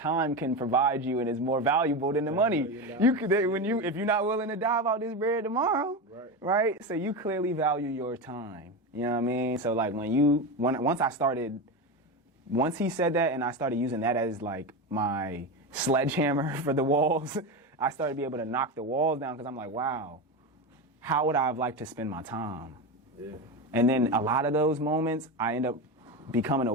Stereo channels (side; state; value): both; normal; correlation 0.19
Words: can provide you and is more valuable than the money. You could, if you're not willing to dive out this bread tomorrow, right? So you clearly value your time. You know what I mean? So like once he said that and I started using that as like my sledgehammer for the walls, I started to be able to knock the walls down because I'm like, wow, how would I have liked to spend my time? Yeah. And then a lot of those moments, I end up becoming